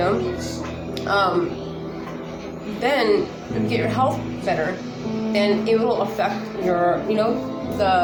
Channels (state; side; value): identical; both; correlation 1.00